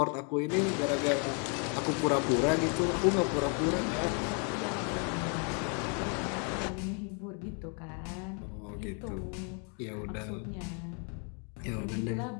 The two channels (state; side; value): quieter; right; 38.8 dB